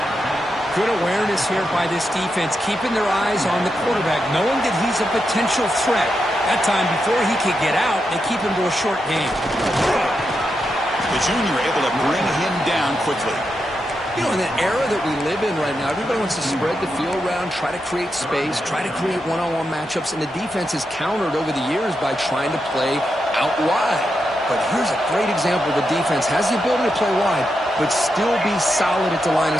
Good awareness here by this defense, keeping their eyes on the quarterback, knowing that he's a potential threat. That time, before he could get out, they keep him to a short gain. The junior able to bring him down quickly. You know, in the era that we live in right now, everybody wants to spread the field around, try to create space, try to create one-on-one matchups, and the defense has countered over the years by trying to play out wide. But here's a great example. The defense has the ability to play wide, but still be solid at the line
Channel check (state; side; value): normal; both; correlation 0.86